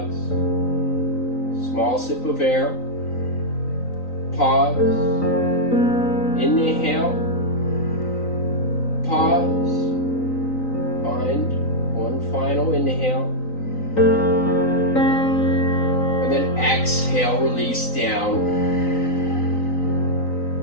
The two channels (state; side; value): late; right; 3.9 ms